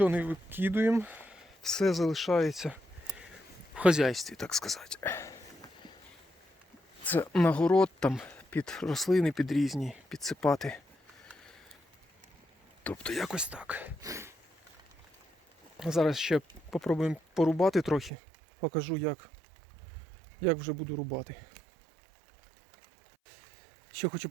не викидуємо. Все залишається в хазяйстві, так сказати. Це на город, там під рослини, під різні, підсипати. Тобто якось так. Зараз ще попробуємо порубати трохи. Покажу, як вже буду рубати. Ще хочу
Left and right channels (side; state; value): left; drops out; at 18.1 s